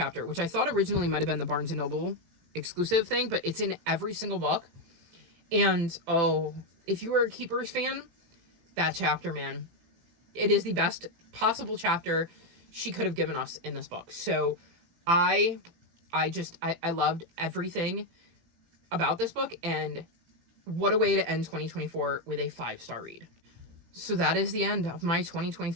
which I thought originally might have been the Barnes & Noble exclusive thing, but it's in every single book. And, oh, if you were a Keepers fan, that chapter, man, it is the best possible chapter she could have given us in this book. So I loved everything about this book, and what a way to end 2024 with a 5-star read. So that is the end of my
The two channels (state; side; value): late; left; 18 ms